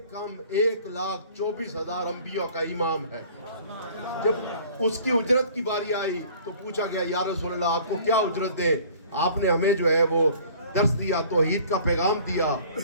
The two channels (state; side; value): inverted; both; correlation -0.50